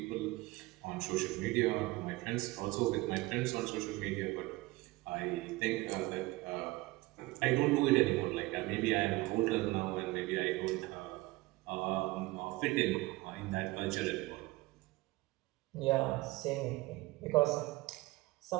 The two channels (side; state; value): left; quieter; 21.1 dB